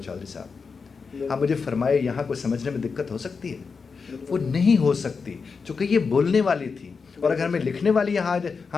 چودھری صاحب آپ مجھے فرمائے یہاں کوئی سمجھنے میں دقت ہو سکتی ہے؟ وہ نہیں ہو سکتی, چونکہ یہ بولنے والی تھی. اور اگر ہمیں لکھنے والی یہاں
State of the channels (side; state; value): right; quieter; 5.1 dB